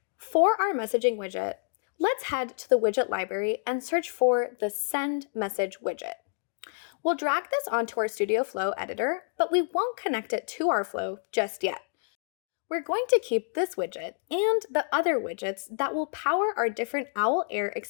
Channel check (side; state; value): right; silent; digital silence